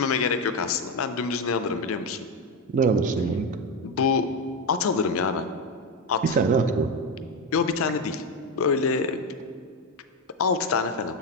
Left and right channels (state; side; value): normal; both; correlation 0.11